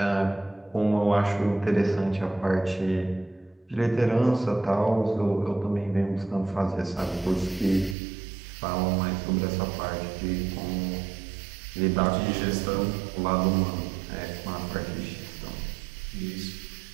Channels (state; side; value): drops out; left; at 8.0 s